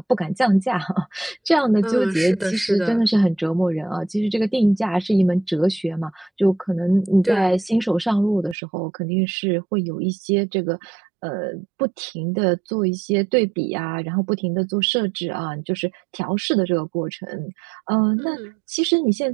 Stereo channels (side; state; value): left; drops out; at 8.6 s